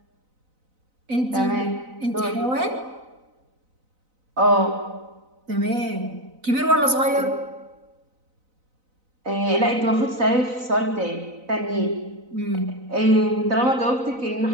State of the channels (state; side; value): late; left; 4.0 ms